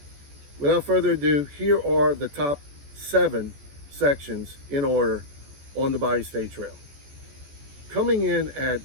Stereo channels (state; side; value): late; left; 14 ms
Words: without further ado, here are the top 7 sections in order on the Bayou State Trail. Coming in